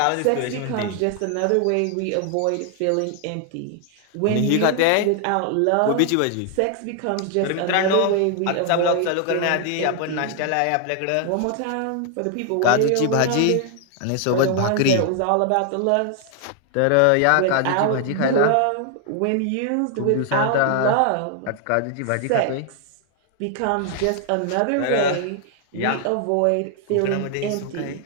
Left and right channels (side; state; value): both; different; correlation 0.00